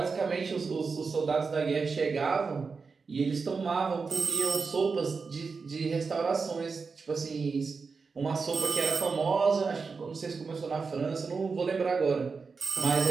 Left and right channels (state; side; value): quieter; left; 4.8 dB